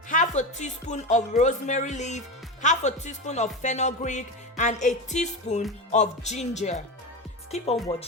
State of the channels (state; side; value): normal; both; correlation 0.21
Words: half a teaspoon of rosemary leaf, half a teaspoon of fenugreek, and a teaspoon of ginger. Keep on